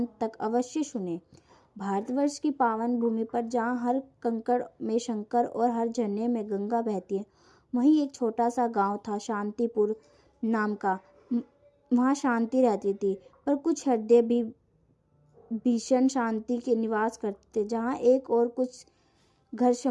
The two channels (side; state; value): both; identical; correlation 1.00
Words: तक अवश्य सुने। भारतवर्ष की पावन भूमि पर जहाँ हर कंकड़ में शंकर और हर झरने में गंगा बहती है, वहीं एक छोटा सा गांव था शांतिपुर नाम का। वहाँ शांति रहती थी, पर कुछ हृदय भी भीषण शांति के निवास करते थे। जहाँ एक और कुछ घर